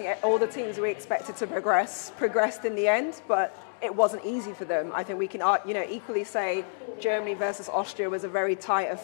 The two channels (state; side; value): silent; right; digital silence